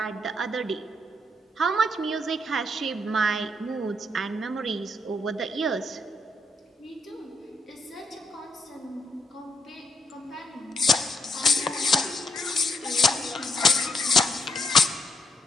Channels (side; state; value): both; normal; correlation 0.77